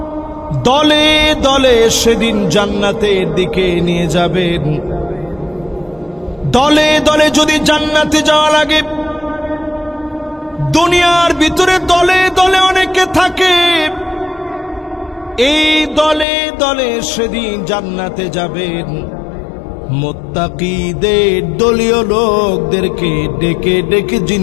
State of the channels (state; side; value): drops out; right; at 16.2 s